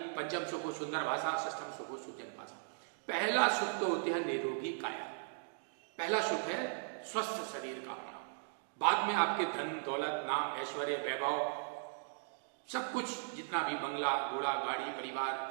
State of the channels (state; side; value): silent; left; digital silence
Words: पंचम सुख हो सुंदर भाषा, षष्ठम सुख हो सुजन भाषा। पहला सुख तो होते हैं निरोगी काया। पहला सुख है स्वस्थ शरीर का होना। बाद में आपके धन दौलत नाम ऐश्वर्य वैभव सब कुछ, जितना भी बंगला घोड़ा गाड़ी